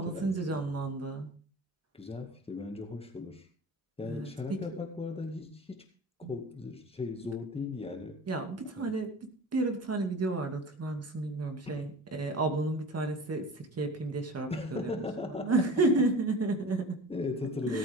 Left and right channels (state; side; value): normal; both; correlation 0.38